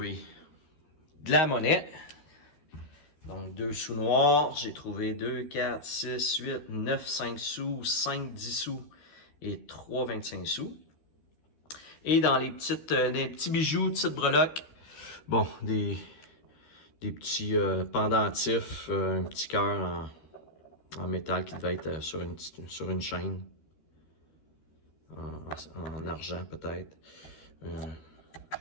de la monnaie. Donc 2 sous noirs. J'ai trouvé 2, 4, 6, 8, 9, 5 sous, 5, 10 sous et 3, 25 sous. Et dans les petits bijoux, petites breloques, bon, des petits pendentifs, un petit cœur en métal qui devait être sur une chaîne, en argent peut-être.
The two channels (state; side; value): late; right; 13 ms